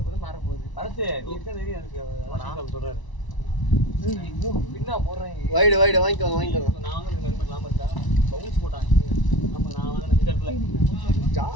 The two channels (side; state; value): right; late; 1.0 ms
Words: போது மாற போகுது. பரத்து நீ இருக்க தெரியும் எனக்கு. அதான் சொல்றாரு. பின்னா போடுறேன். வைடு வைடு வாங்கிக்கோங்க. நான் வந்து ஹெல்மெட் இல்லாம இருக்கா. பவுன்ஸ் போட்டாங்க. நம்ம நான் வாங்கின இந்த இடத்துல